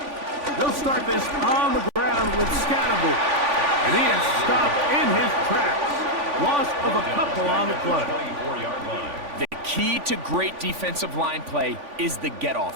They'll start this on the ground with Scannable. And he is stopped in his tracks. play. 24-yard line. The key to great defensive line play is the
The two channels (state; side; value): late; left; 3.5 ms